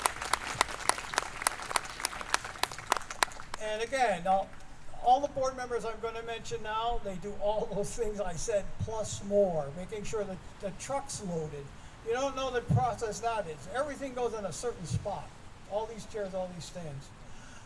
And again, all the board members I'm going to mention now, they do all those things I said plus more, making sure that the truck's loaded. You don't know the process that is. Everything goes in a certain spot. All these chairs, all these stands.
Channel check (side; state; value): both; identical; correlation 1.00